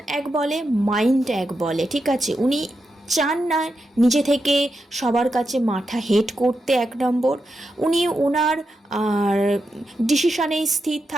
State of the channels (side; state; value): both; normal; correlation 0.87